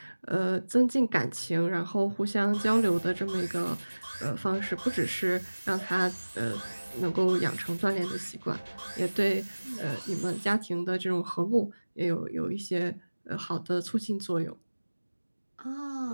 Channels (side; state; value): both; inverted; correlation -1.00